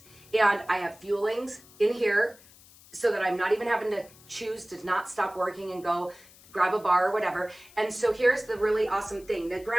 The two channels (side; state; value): left; noise; hiss, 24 dB below the sound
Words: And I have fuelings in here so that I'm not even having to choose to not stop working and go grab a bar or whatever. And so here's the really awesome thing. Now